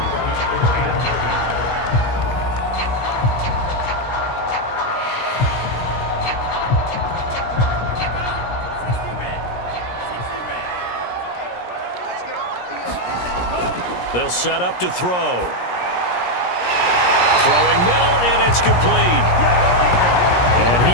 They'll set up to throw. Throwing middle, and it's complete. And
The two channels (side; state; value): right; late; 17 ms